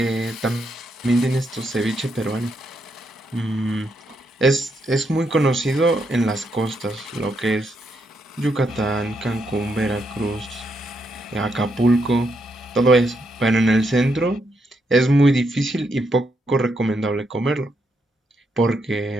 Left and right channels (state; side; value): normal; both; correlation 0.79